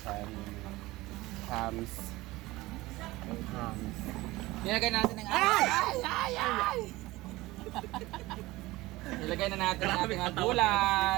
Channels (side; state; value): left; quieter; 19.4 dB